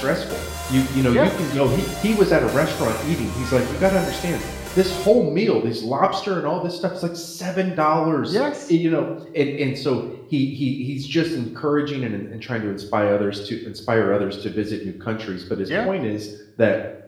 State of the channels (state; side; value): identical; both; correlation 1.00